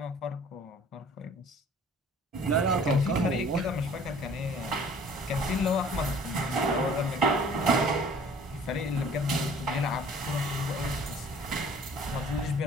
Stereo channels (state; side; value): normal; both; correlation 0.51